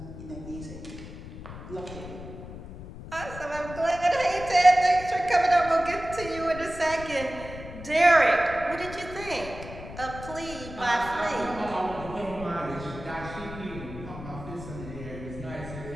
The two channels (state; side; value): noise; left; rumble, 12 dB below the sound